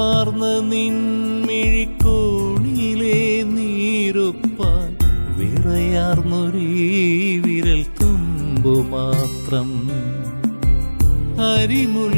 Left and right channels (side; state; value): both; inverted; correlation -1.00